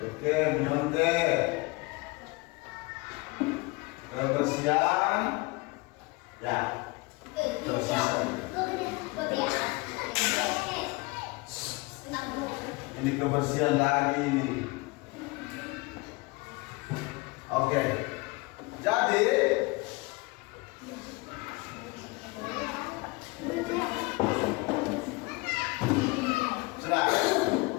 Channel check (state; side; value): quieter; right; 25.0 dB